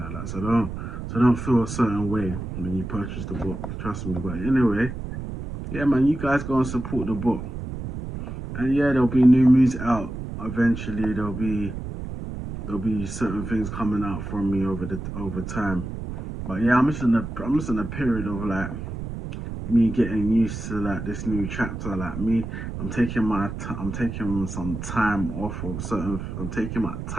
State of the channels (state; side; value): noise; right; rumble, 7 dB below the sound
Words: like that. So don't feel a certain way when you purchase the book. Trust me. But anyway, yeah, man, you guys go and support the book. And yeah, there'll be new music out eventually. There'll be certain things coming out from me over time. But yeah, I'm just in a period of like me getting used to like this new chapter. Like me, I'm taking some time off of certain. I'm taking my